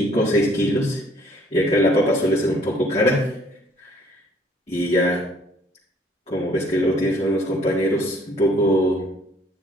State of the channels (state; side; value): normal; both; correlation 0.60